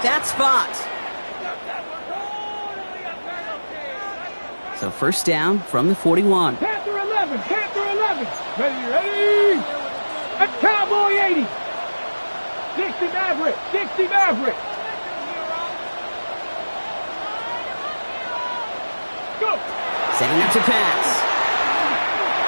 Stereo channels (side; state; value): both; inverted; correlation -1.00